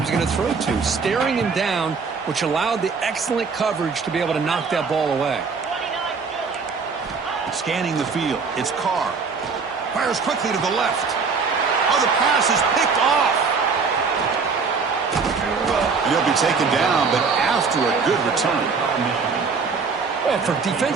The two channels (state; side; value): quieter; left; 5.0 dB